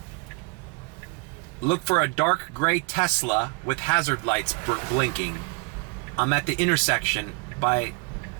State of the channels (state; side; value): quieter; left; 31.1 dB